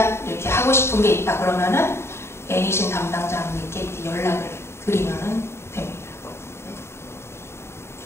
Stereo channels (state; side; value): late; right; 0.12 ms